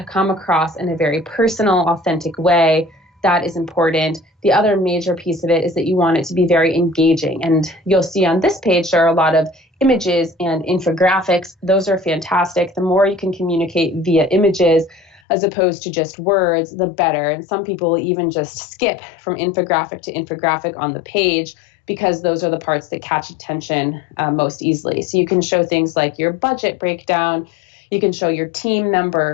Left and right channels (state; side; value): drops out; right; at 15.2 s